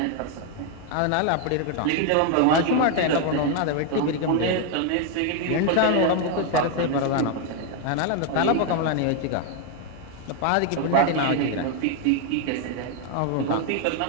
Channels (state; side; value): different; both; correlation 0.01